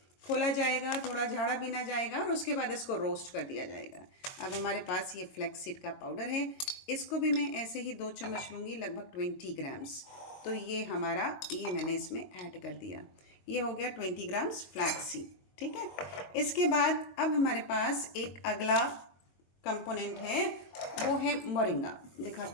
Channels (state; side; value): late; right; 22 ms